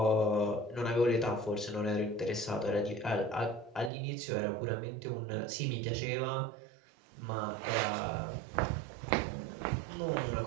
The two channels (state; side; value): drops out; left; at 3.9 s